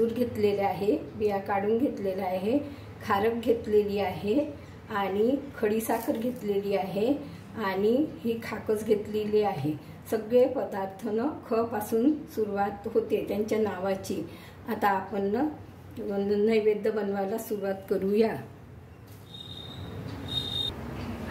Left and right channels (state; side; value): identical; both; correlation 1.00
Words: घेतलेले आहे, बिया काढून घेतलेला आहे, खारक घेतलेली आहे आणि खडी साखर घेतलेली आहे आणि ही खाकस घेतलेली आहे। सगळे पदार्थ ख पासून सुरुवात होते त्यांच्या नावाची। आता आपण नैवेद्य बनवायला सुरुवात करूया।